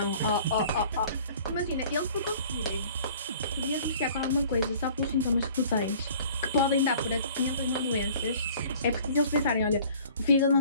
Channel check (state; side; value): inverted; both; correlation -0.50